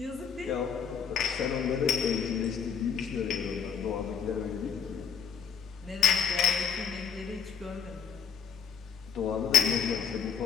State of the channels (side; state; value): right; quieter; 7.2 dB